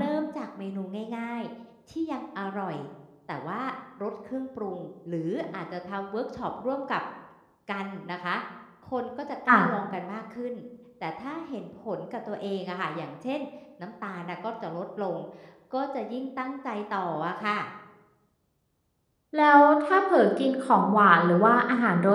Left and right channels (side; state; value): both; identical; correlation 1.00